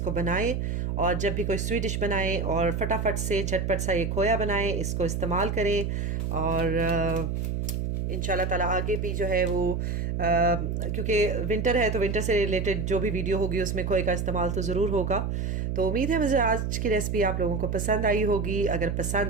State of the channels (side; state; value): right; noise; hum, 1 dB below the sound